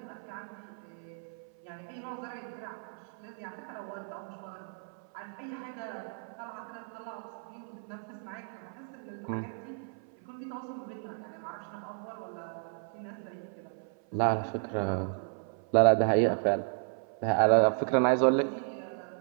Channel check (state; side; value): silent; left; 56 dB below the other